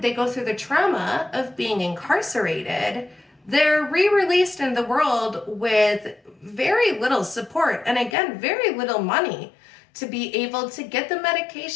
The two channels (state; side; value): drops out; right; at 8.2 s